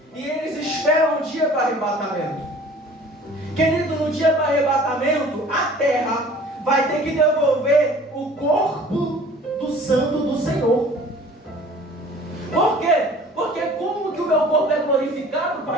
e eles esperam o dia do arrebatamento. Querido, no dia do arrebatamento, a terra vai ter que devolver o corpo do santo do Senhor. Por quê? Porque como que o meu corpo é glorificado,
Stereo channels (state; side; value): normal; both; correlation 0.48